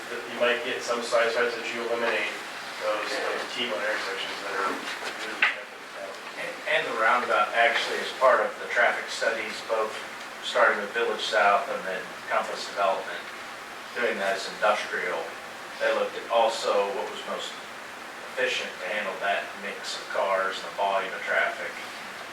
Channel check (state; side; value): identical; both; correlation 1.00